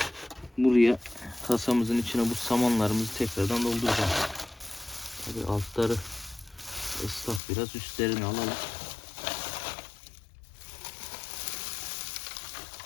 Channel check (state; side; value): drops out; right; at 7.4 s